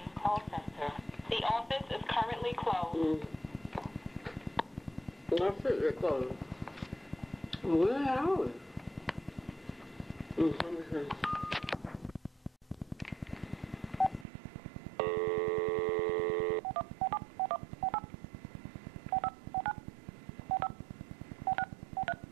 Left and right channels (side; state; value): left; drops out; at 14.2 s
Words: Call Center. The office is currently closed. That's it, they're closed. Where are we? Let me see.